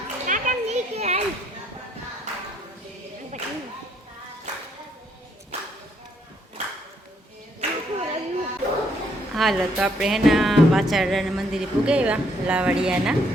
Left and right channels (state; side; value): normal; both; correlation 0.70